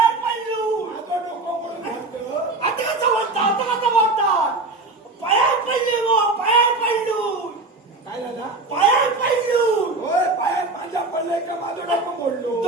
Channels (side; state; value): left; quieter; 3.3 dB